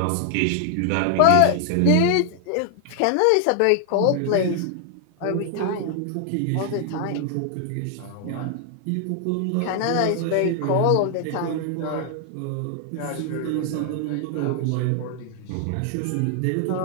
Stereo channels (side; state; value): both; different; correlation 0.00